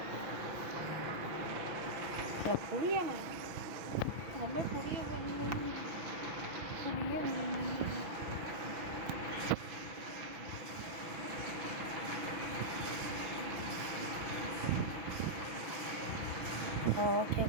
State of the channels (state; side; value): late; left; 6.1 ms